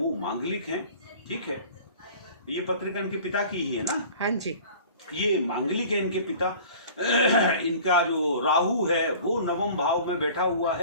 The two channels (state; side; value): inverted; both; correlation -0.44